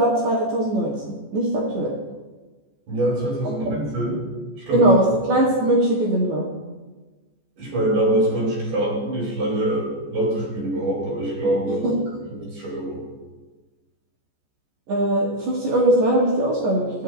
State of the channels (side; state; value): left; late; 14 ms